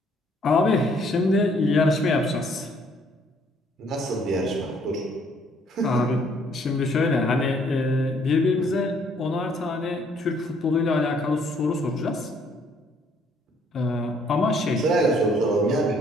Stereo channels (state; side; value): normal; both; correlation 0.64